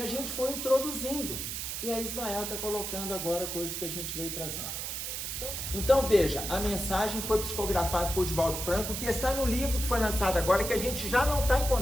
a gente foi introduzindo. E aí Ismael está colocando agora coisas que a gente veio trazendo. Então veja, a mensagem foi psicografada por Divaldo Franco, que está no livro que foi lançado agora, que a gente já não está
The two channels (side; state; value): right; noise; hiss, 4 dB below the sound